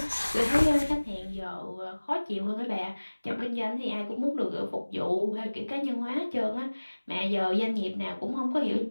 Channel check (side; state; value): both; inverted; correlation -1.00